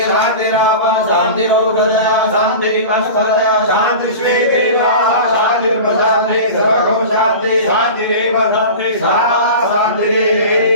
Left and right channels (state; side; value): inverted; both; correlation -0.33